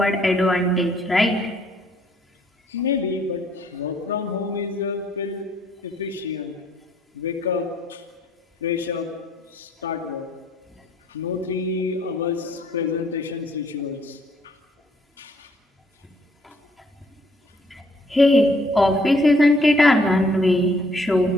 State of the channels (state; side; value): normal; both; correlation 0.65